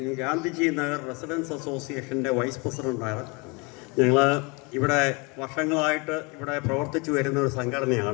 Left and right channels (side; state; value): right; quieter; 29.3 dB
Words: ഗാന്ധിജി നഗർ റെസിഡൻസ് അസോസിയേഷൻ്റെ വൈസ് പ്രസിഡൻ്റാണ്. ഞങ്ങൾ ഇവിടെ വർഷങ്ങളായിട്ട് ഇവിടെ പ്രവർത്തിച്ചു വരുന്ന ഒരു